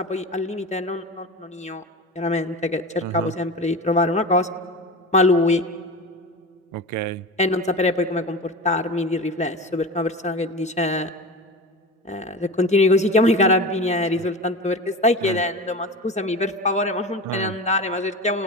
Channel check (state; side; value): normal; both; correlation 0.29